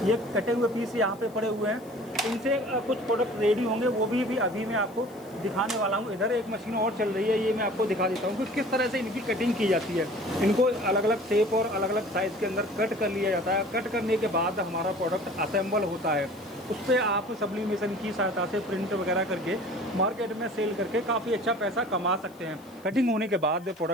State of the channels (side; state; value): left; noise; hiss, 27 dB below the sound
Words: ये कटे हुए पीस यहाँ पे पड़े हुए हैं। इनसे कुछ प्रोडक्ट रेडी होंगे, वो भी अभी मैं आपको दिखाने वाला हूँ। इधर एक मशीन और चल रही है, ये मैं आपको दिखा देता हूँ कि किस तरह से इनकी कटिंग की जाती है। इनको अलग अलग शेप और अलग अलग साइज़ के अंदर कट कर लिया जाता है। कट करने के बाद हमारा प्रोडक्ट असेंबल होता है। उस पर आप सब्लिमेशन की सहायता से प्रिंट वगैरह करके मार्केट में सेल करके काफ़ी अच्छा पैसा कमा सकते हैं। कटिंग होने के बाद